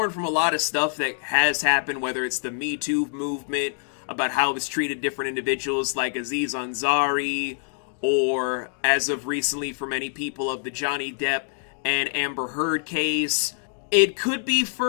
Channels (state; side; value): silent; right; digital silence